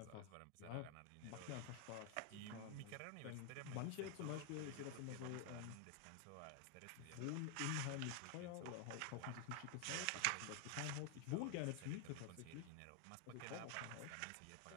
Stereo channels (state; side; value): different; both; correlation 0.01